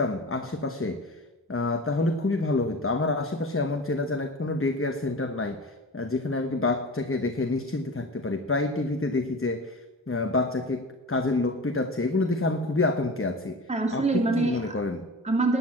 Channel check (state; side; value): normal; both; correlation 0.34